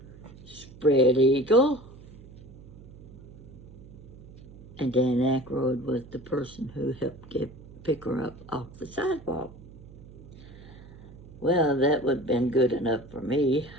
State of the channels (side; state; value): right; noise; hum, 18 dB below the sound